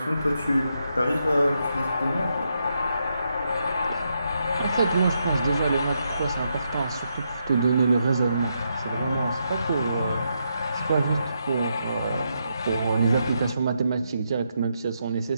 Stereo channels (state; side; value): inverted; both; correlation -0.81